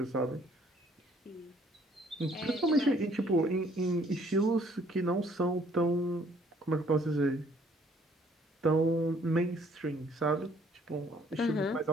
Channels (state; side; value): normal; both; correlation 0.62